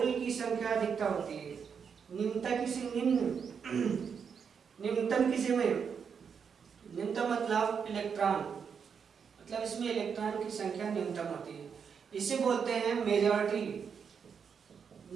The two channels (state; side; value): quieter; left; 6.6 dB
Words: की संख्या अधिकता होती है, निम्नता किसी निम्नतम किसी में, निम्नतम मतलब इलेक्ट्रॉन, मतलब इसमें इलेक्ट्रॉन की संख्या न्यूनतम होती है। इसे बोलते हैं मेजॉरिटी,